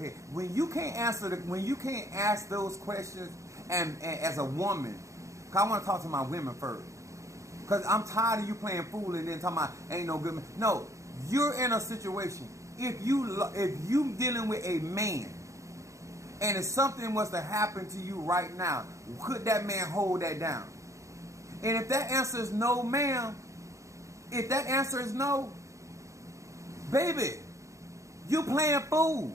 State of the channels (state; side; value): late; left; 0.15 ms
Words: When you can't ask those questions, and as a woman, cause I want to talk to my women first. Because I'm tired of you playing fool and then talking about ain't no good man. No, you're in a situation. If you dealing with a man, and if something was to happen to you right now, could that man hold that down? And if that answer is no, ma'am, if that answer is no, baby, you playing fool.